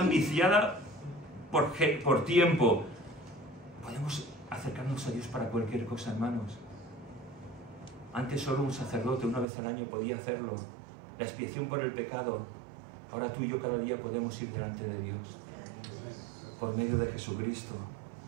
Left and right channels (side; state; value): left; drops out; at 9.5 s